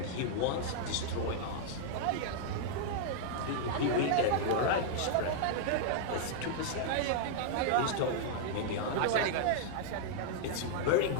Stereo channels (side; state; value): both; different; correlation -0.01